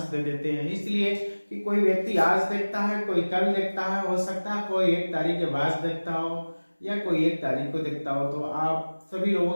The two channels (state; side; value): inverted; both; correlation -1.00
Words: दे देते हैं, इसलिए कि कोई व्यक्ति आज देखता है, कोई कल देखता है, हो सकता है कोई 1 तारीख के बाद देखता हो या कोई 1 तारीख को देखता हो। तो आप सभी